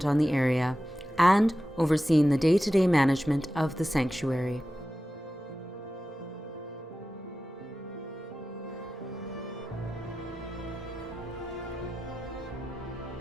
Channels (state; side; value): normal; both; correlation 0.93